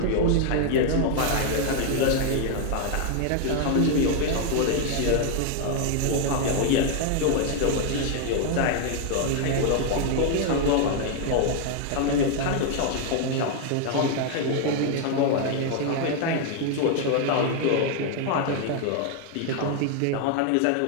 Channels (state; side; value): different; both; correlation 0.00